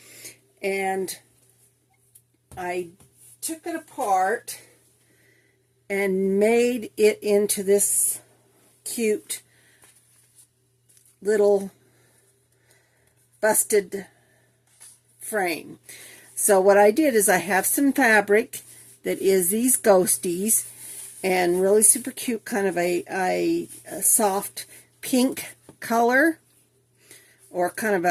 and I took it apart and made it into this cute little busted frame. So what I did is I have some fabric that is these ghosties and really super cute, kind of a soft pink color or kind of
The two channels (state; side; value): identical; both; correlation 1.00